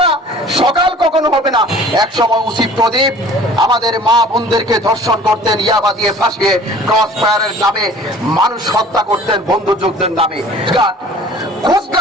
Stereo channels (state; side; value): normal; both; correlation 0.48